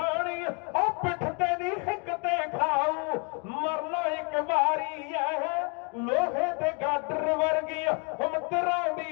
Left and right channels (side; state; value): right; quieter; 34.6 dB